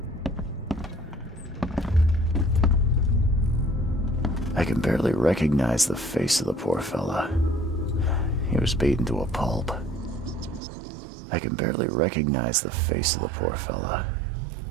I can barely recognize the face of the poor fella. He was beaten to a pulp. I can barely recognize the face of the poor fella.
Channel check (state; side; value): drops out; left; at 10.6 s